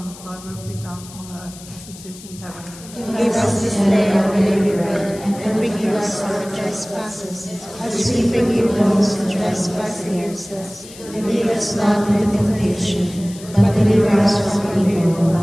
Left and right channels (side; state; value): left; noise; hiss, 18 dB below the sound